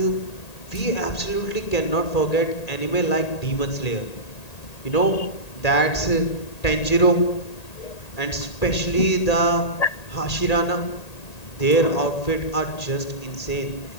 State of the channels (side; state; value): right; late; 1.8 ms